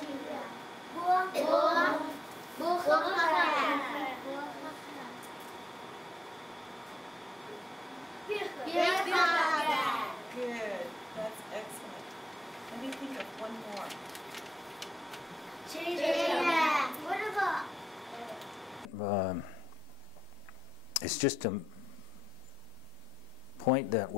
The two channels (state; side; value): normal; both; correlation 0.86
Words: good. That's excellent. Let me think of one more. least just to point that